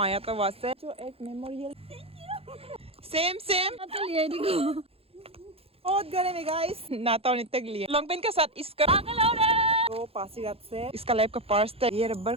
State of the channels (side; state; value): left; late; 0.28 ms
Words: आया था वहाँ से जो एक मेमोरियल सेम बहुत गर्म है गाइस। नाता और नित्य के लिए लॉन्ग पेन के साथ इसका तो पासीघाट से इसका लाइफ का पर्स था। ये रबर